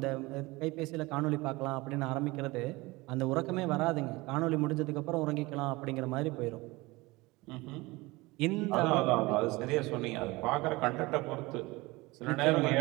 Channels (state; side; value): quieter; left; 22.1 dB